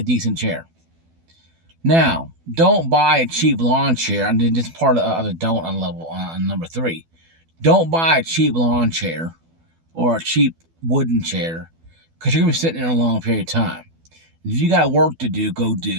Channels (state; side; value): late; left; 12 ms